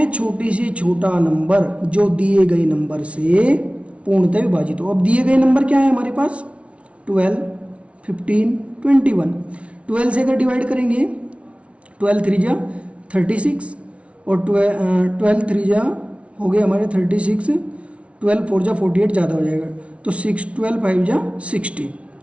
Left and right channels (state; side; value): late; left; 0.062 ms